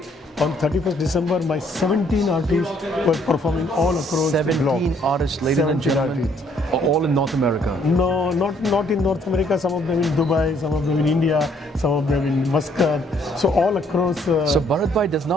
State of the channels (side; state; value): both; normal; correlation 0.66